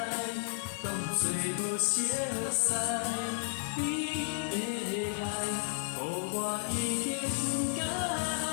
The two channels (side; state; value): right; silent; digital silence